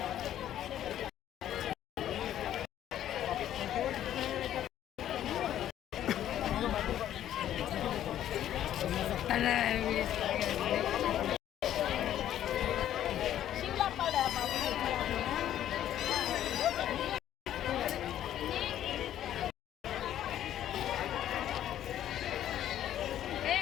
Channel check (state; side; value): quieter; right; 11.5 dB